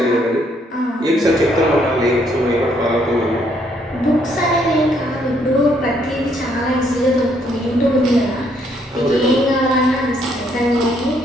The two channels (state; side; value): normal; both; correlation 0.70